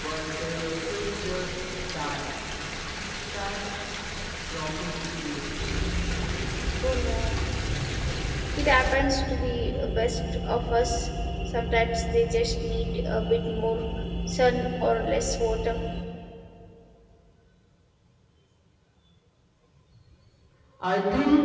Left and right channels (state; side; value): identical; both; correlation 1.00